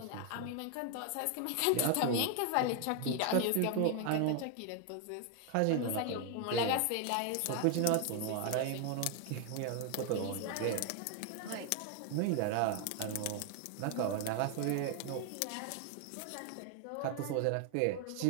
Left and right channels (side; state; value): both; different; correlation 0.00